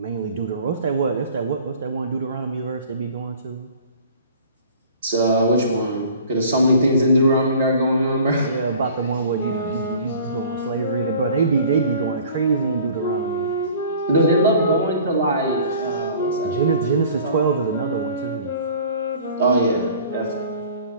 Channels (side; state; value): both; inverted; correlation -0.48